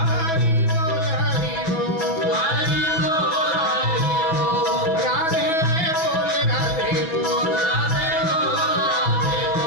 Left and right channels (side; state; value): right; late; 6.1 ms